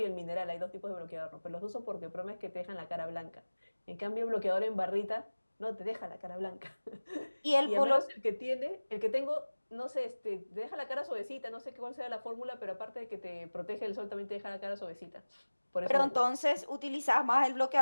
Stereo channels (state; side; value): inverted; both; correlation -1.00